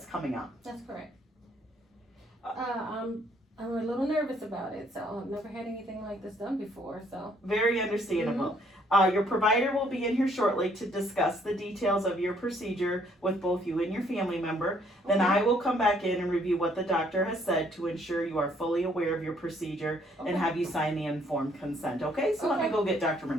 coming up. That's correct. I'm a little nervous about it, so I've never had anything like this done before, so. Very understandable. Your provider will be in here shortly to discuss the details of your procedure with both you and your family member. Then Okay. I will come back in and review what the doctor has said to ensure you are fully aware of your procedure and have you sign the informed consent, okay? So let me Okay. go get Dr.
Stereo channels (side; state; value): both; normal; correlation 0.66